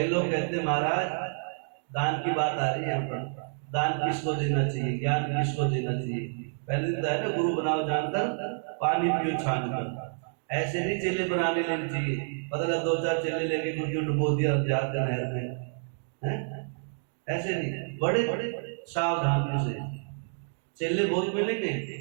लोग कहते महाराज दान की बात आ रही है यहाँ पर, दान किसको देना चाहिए, ज्ञान किसको देना चाहिए? पहले दिन है ना गुरु बनाओ जानकर पानी पियो छान कर, ऐसे नहीं चेले बनाने लेने चाहिए। पता लगा 2-4 चेले लेके गुरु डुबो दिया जाकर नहर में, हैं? ऐसे नहीं, बड़े बड़े सावधानी से चेले बहुत मिलेंगे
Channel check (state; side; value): silent; left; digital silence